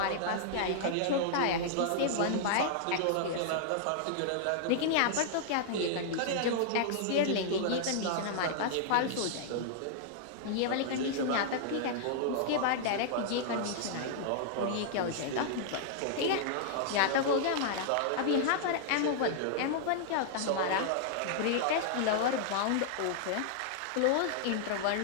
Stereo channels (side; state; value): both; different; correlation -0.01